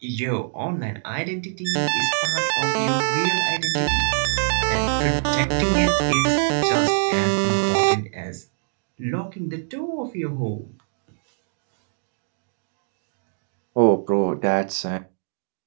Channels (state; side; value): silent; left; digital silence